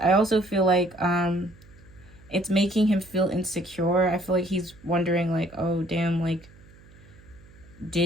I also feel like it's making him feel insecure. I feel like he's wondering like, oh damn, like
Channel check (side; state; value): right; noise; hum, 24 dB below the sound